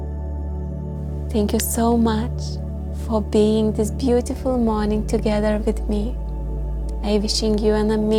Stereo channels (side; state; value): both; identical; correlation 1.00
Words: Thank you so much for being this beautiful morning together with me. I'm wishing you an